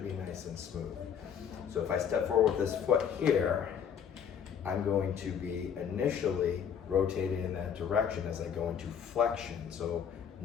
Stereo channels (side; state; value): right; quieter; 7.9 dB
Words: be nice and smooth. So if I step forward with this foot here, I'm going to be initially rotating in that direction as I go into flexion. So